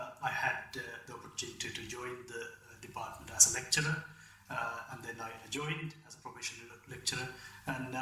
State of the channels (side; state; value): both; identical; correlation 1.00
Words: had the opportunity to join the department as a lecturer, and then I joined as a professional lecturer, and